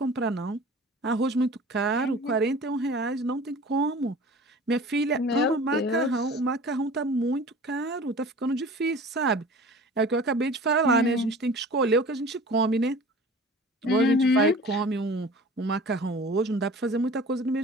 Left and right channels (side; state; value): both; normal; correlation 0.42